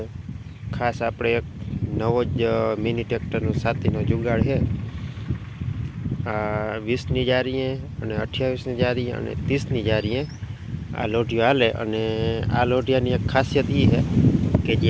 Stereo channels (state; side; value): identical; both; correlation 1.00